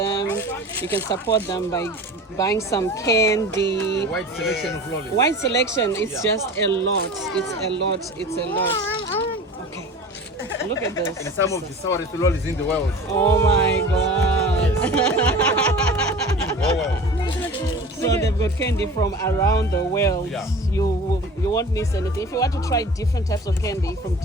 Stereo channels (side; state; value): both; normal; correlation 0.38